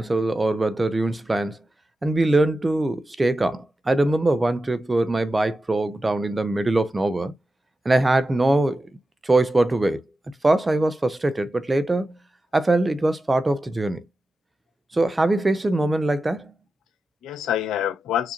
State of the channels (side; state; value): both; normal; correlation 0.92